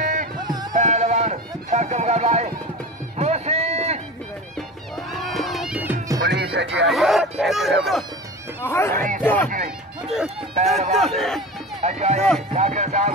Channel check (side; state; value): both; normal; correlation 0.31